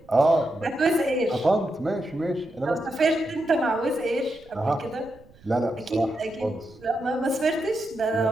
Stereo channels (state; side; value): noise; right; rumble, 25 dB below the sound